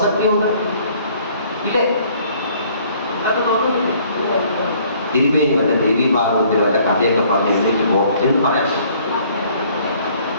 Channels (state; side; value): inverted; both; correlation -0.59